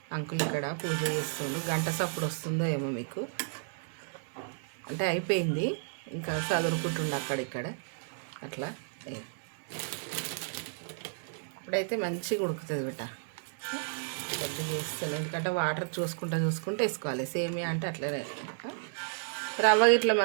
అంకుల్ ఇక్కడ పూజ చేస్తుంది, గంట సప్పుడు వస్తుందో ఏమో మీకు. అంటే అయిపోయింది, ఇంకా చదువుకుంటుండే అక్కడిక్కడ అట్లా. ఇప్పుడైతే మంచిగా ఉడుకుతుంది బిడ్డ. కొద్దిగా వేస్తాను, ఎందుకంటే వాటర్ చూసుకుంటూ వేసుకోవాలి. సేమియా అంటే అట్లనే. రవ్వ ఇట్లా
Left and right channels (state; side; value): silent; left; digital silence